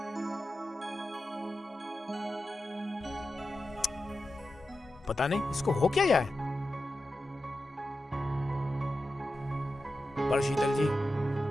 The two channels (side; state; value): both; normal; correlation 0.92